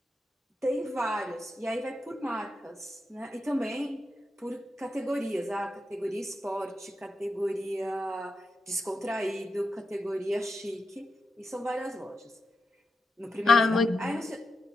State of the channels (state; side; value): normal; both; correlation 0.88